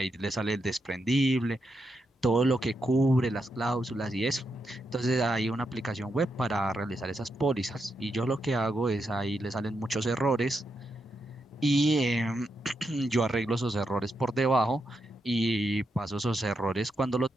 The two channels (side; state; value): both; normal; correlation 0.83